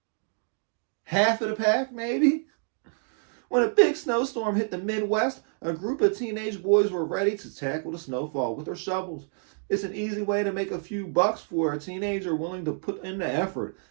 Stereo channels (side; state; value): left; silent; digital silence